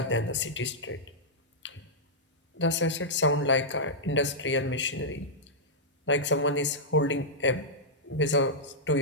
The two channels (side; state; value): both; normal; correlation -0.10